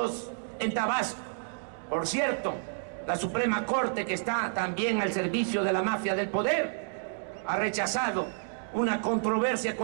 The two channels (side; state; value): left; silent; digital silence